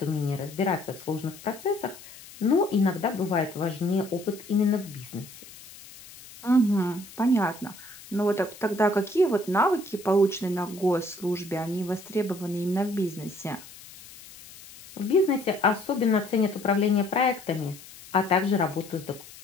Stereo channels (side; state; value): left; noise; hiss, 18 dB below the sound